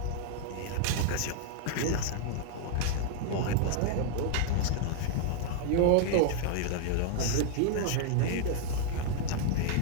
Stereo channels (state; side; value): different; both; correlation -0.01